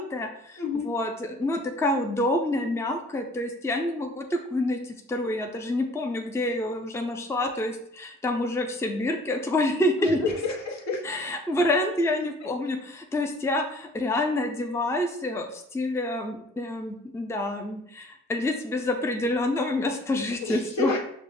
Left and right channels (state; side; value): normal; both; correlation 0.53